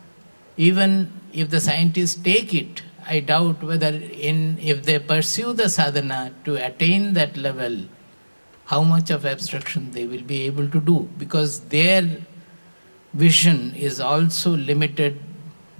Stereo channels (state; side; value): inverted; both; correlation -1.00